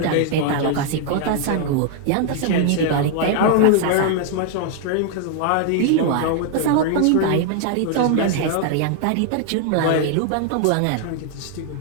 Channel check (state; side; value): different; both; correlation 0.00